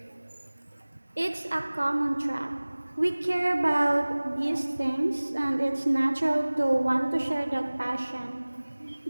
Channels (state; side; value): inverted; both; correlation -1.00